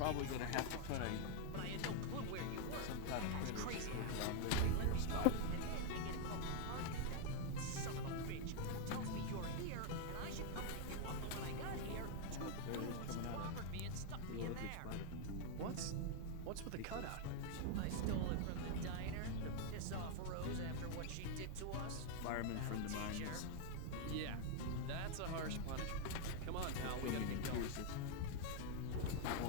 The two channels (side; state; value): both; different; correlation 0.00